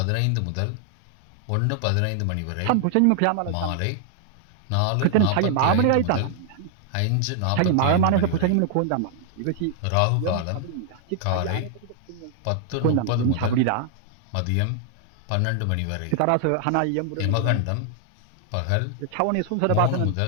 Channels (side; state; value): both; different; correlation 0.00